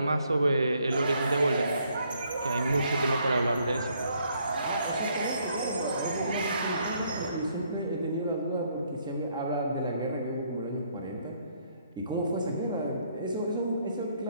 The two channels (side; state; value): both; inverted; correlation -0.69